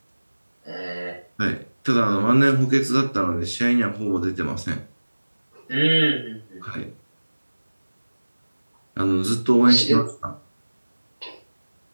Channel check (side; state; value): both; inverted; correlation -1.00